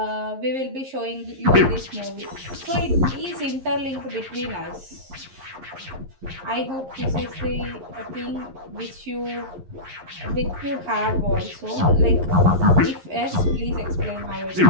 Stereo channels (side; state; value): left; late; 11 ms